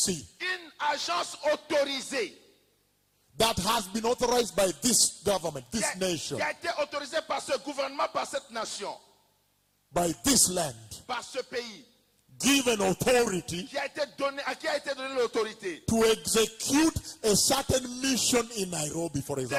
une agence autorisée that has been authorized by this government, this nation, qui a été autorisée par ce gouvernement, par cette nation, by this land, par ce pays, given authority qui a été donné, à qui a été donné l'autorité to execute a certain mission in Nairobi, for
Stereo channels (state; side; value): identical; both; correlation 1.00